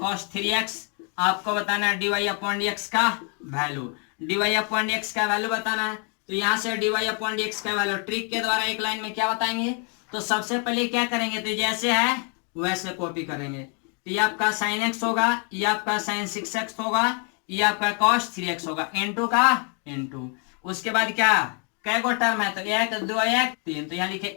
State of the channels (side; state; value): right; quieter; 38.5 dB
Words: 3x, आपको बताना है dy अपॉन dx का वैल्यू, dy अपॉन dx का वैल्यू बताना है। तो यहाँ से dy अपॉन dx का वैल्यू ट्रिक के द्वारा एक लाइन में क्या बताएंगे, तो सबसे पहले क्या करेंगे, तो जैसे है वैसे कॉपी करेंगे। तो ये आपका sin x होगा, ये आपका sin 6x होगा, ये आपका cos 3x होगा इंटू का इंटू। उसके बाद क्या कै गो टर्म है, तो 1 2 1 3, तो यहाँ लिखे